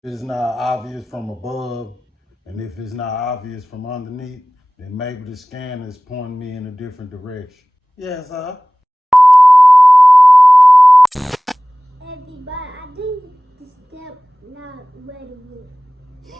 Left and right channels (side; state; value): both; normal; correlation 0.98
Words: If it's not obvious from above, and if it's not obvious from underneath, then maybe the scanner is pointing me in a different direction. Yes, sir. Everybody, I think the step not ready